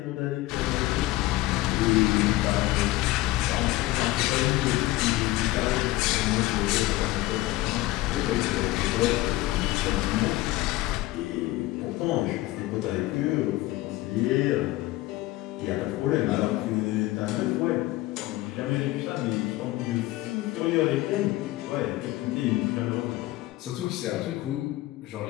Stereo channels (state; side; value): quieter; right; 17.7 dB